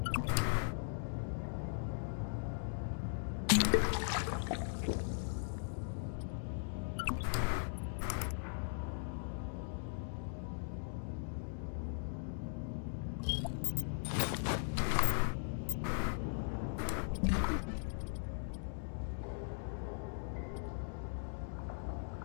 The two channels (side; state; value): right; silent; digital silence